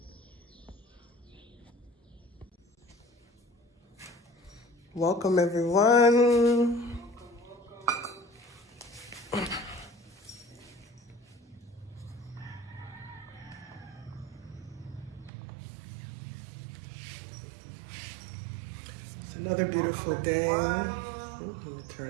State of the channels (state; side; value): drops out; left; at 15.3 s